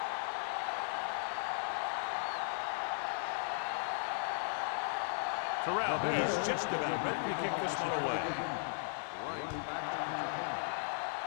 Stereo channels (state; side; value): silent; right; digital silence